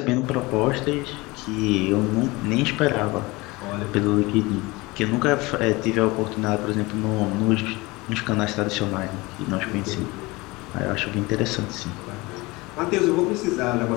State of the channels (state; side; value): quieter; right; 22.8 dB